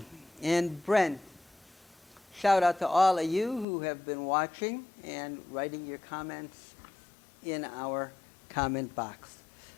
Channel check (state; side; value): drops out; right; at 3.7 s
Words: and Brent. Shout out to all of you who have been watching and writing your comments in our comment box.